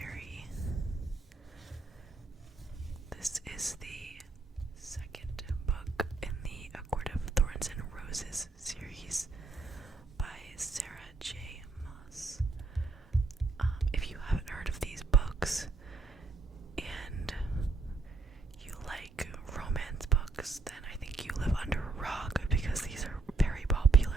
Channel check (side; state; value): left; quieter; 3.6 dB